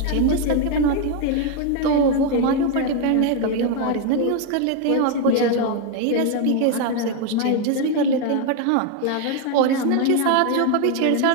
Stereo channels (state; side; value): different; both; correlation 0.01